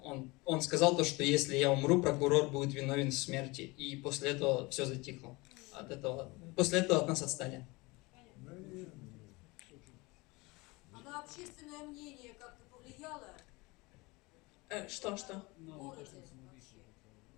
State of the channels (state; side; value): quieter; right; 24.3 dB